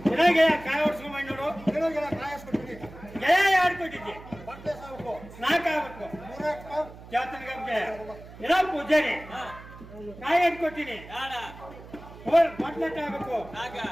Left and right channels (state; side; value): noise; right; hum, 17 dB below the sound